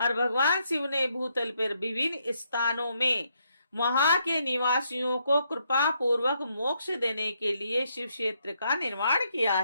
भगवान शिव ने भूतल पर विभिन्न स्थानों में वहां के निवासियों को कृपा पूर्वक मोक्ष देने के लिए शिव क्षेत्र का निर्माण किया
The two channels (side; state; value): both; inverted; correlation -0.76